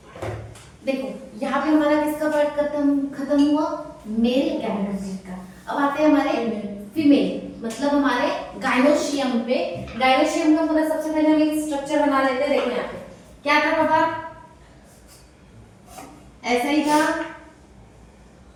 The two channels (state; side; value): identical; both; correlation 1.00